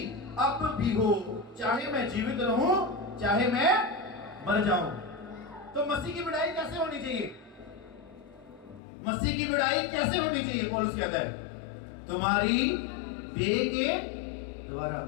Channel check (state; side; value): drops out; right; at 8.8 s